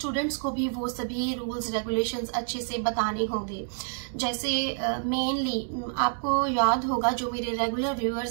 को भी वो सभी रूल्स रेगुलेशंस अच्छे से बताने होंगे। जैसे मेनली आपको याद होगा, जो मेरे रेगुलर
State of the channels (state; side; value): silent; left; digital silence